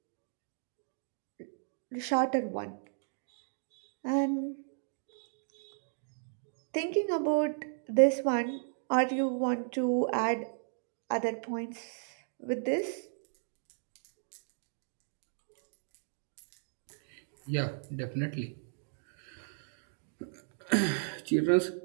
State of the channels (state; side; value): silent; left; digital silence